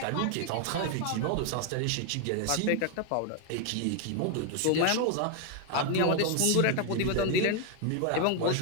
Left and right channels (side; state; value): both; different; correlation 0.01